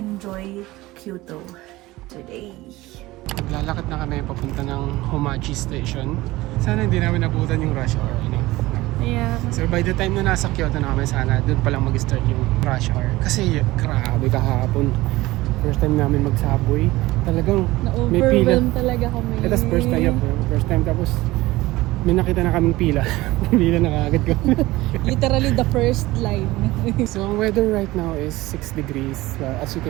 Kyoto today. Maglalakad na kami papunta ng Homachi Station. Sana hindi namin nabutan yung rush hour. Yeah. So by the time na nasa Kyoto na kami, sana doon pa lang mag-start yung rush hour. Kasi grabe kahapon. First time namin mag-subway. Talagang may pila. Talaga kami. Ito first time. First time tapos may nakita na kaming pila. Pila na kaagad ko. Literally the first line. So ang weather right now is 6 degrees. As you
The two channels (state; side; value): quieter; left; 18.9 dB